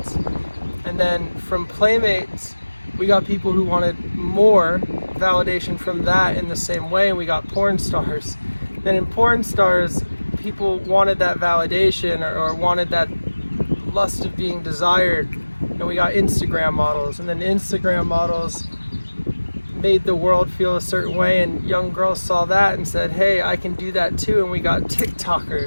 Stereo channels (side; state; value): both; inverted; correlation -1.00